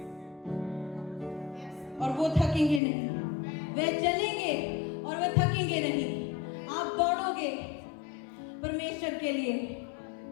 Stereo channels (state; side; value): drops out; right; at 2.8 s